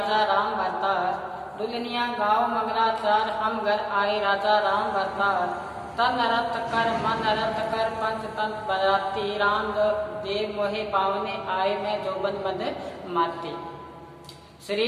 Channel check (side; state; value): both; identical; correlation 1.00